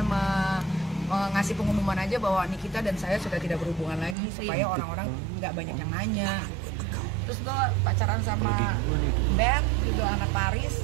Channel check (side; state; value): left; drops out; at 4.2 s